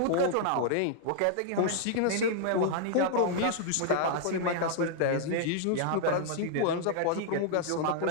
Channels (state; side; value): different; both; correlation -0.01